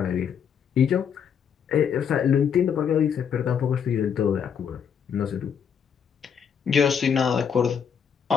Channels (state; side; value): quieter; right; 7.5 dB